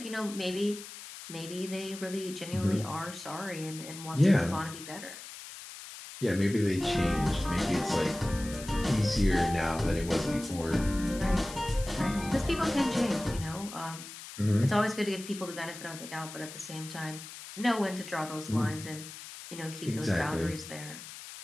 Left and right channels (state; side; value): noise; left; hiss, 13 dB below the sound